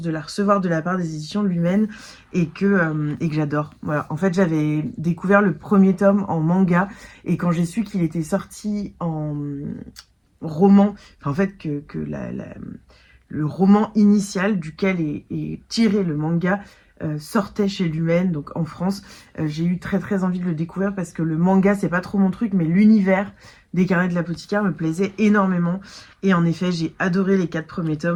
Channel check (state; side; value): identical; both; correlation 1.00